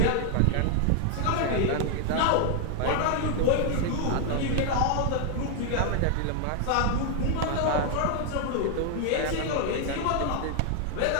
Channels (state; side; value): different; both; correlation 0.00